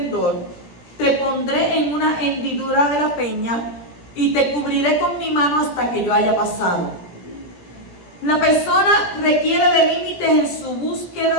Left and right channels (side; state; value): right; late; 17 ms